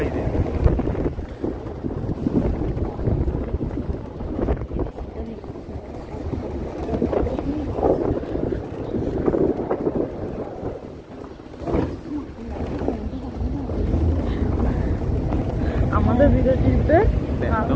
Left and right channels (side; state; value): both; identical; correlation 1.00